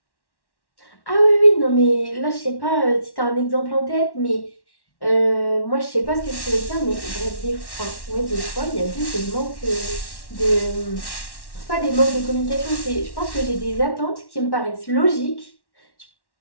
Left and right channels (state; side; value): late; right; 1.1 ms